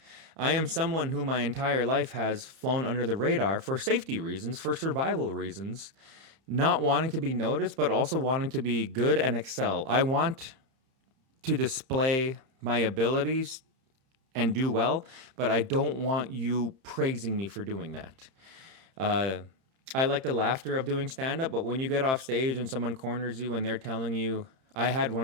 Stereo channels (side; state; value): left; late; 31 ms